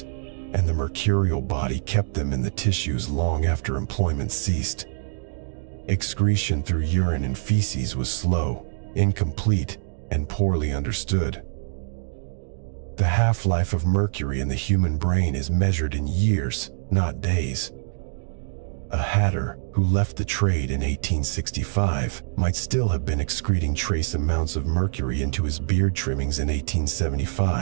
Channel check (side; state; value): left; silent; digital silence